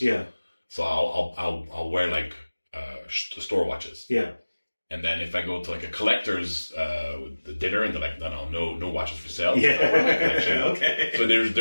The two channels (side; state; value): both; inverted; correlation -1.00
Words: Yeah. so I'll wear like store watches. Yeah. And then if I go to like a collector's dinner and they're like, no watches for sale. Yeah. Okay. So there's